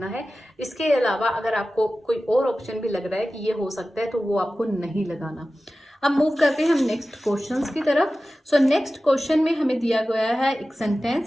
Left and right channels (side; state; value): both; normal; correlation 0.95